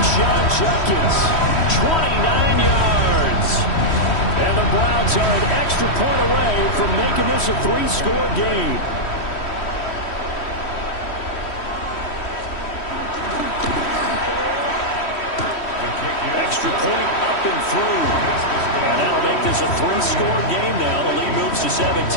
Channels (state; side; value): late; right; 3.1 ms